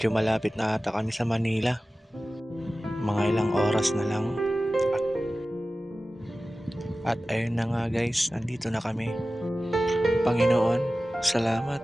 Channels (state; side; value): normal; both; correlation 0.96